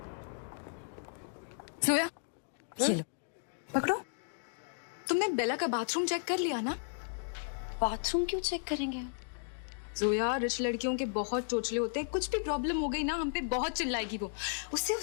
सोया, ये लो, पकड़ो। तुमने बेला का बाथरूम चेक कर लिया ना? बाथरूम क्यों चेक करेंगे? जोया, रिच लड़कियों के बहुत चोचले होते हैं, कुछ भी प्रॉब्लम हो गई ना हम पे बहुत चिल्लाएगी वो। उससे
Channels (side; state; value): right; silent; digital silence